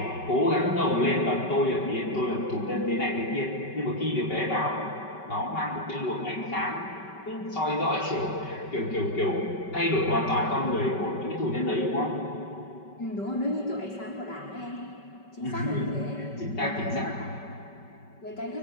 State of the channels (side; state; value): right; late; 5.2 ms